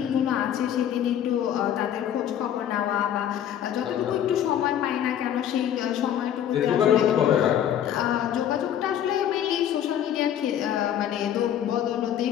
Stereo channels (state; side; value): quieter; right; 10.2 dB